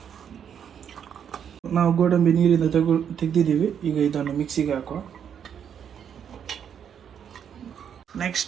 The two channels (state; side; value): quieter; left; 8.3 dB